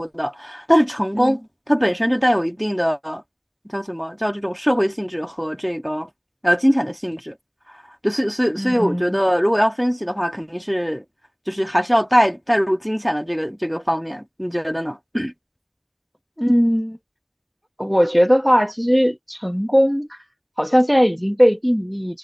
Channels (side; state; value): both; identical; correlation 1.00